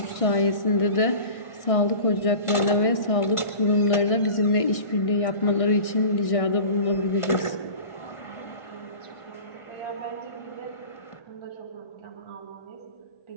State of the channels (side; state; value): right; late; 1.4 ms